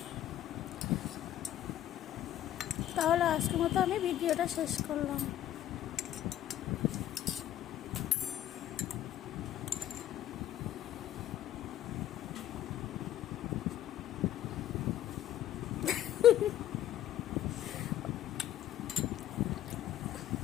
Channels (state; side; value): quieter; right; 12.1 dB